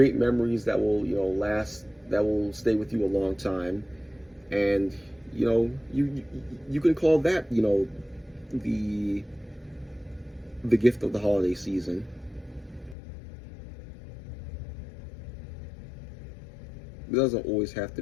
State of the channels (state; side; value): drops out; right; at 13.0 s